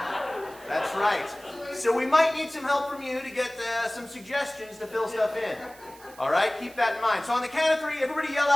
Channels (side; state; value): right; noise; hiss, 22 dB below the sound